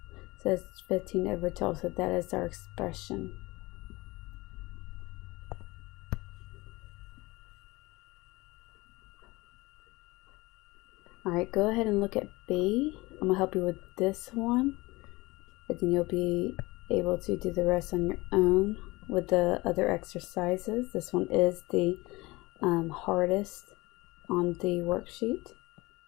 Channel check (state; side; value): quieter; right; 22.0 dB